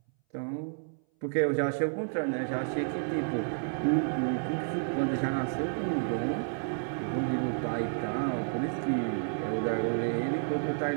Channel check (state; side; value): silent; left; 57 dB below the other